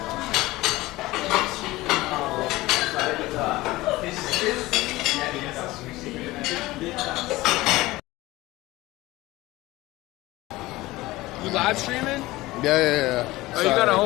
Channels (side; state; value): right; quieter; 18.9 dB